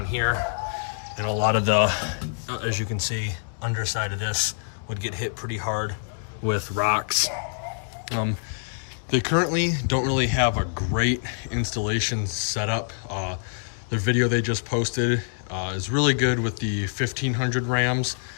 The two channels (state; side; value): silent; right; digital silence